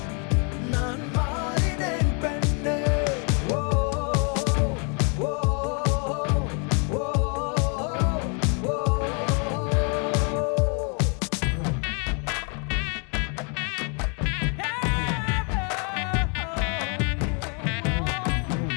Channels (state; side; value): quieter; right; 37.6 dB